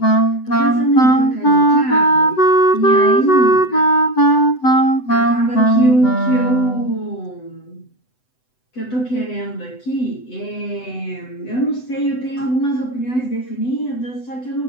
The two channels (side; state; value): right; late; 7.9 ms